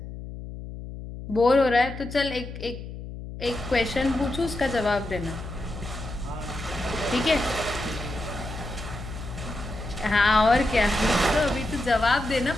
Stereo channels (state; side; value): noise; left; hum, 10 dB below the sound